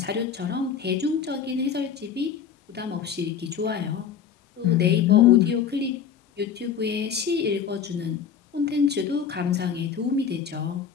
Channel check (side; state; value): right; quieter; 7.6 dB